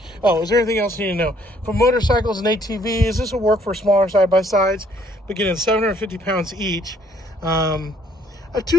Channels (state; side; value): normal; both; correlation 0.64